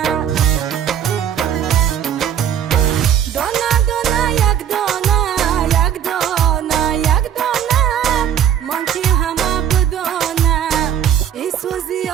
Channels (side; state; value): left; quieter; 9.5 dB